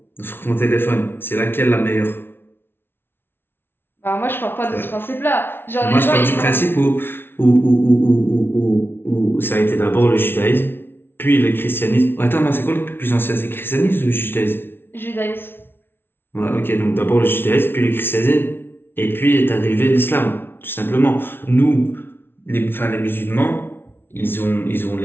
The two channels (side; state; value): right; late; 0.11 ms